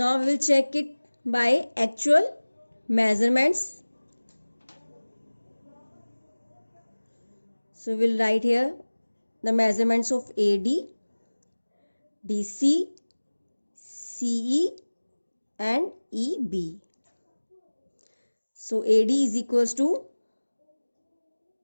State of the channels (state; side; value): inverted; both; correlation -1.00